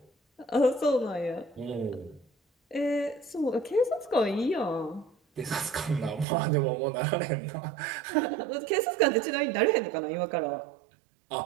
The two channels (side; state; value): left; drops out; at 6.2 s